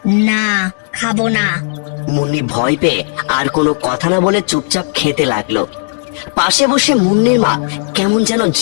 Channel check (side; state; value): right; silent; digital silence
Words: না, খাবো না। মুন্নি ভয় পেয়ে আর কোনো কথা না বলে চুপচাপ খেতে লাগলো। পাশে বসে মুন্নির মা কেমন যেন